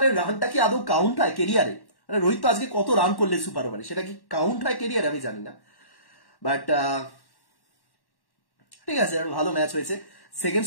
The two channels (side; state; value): right; late; 1.1 ms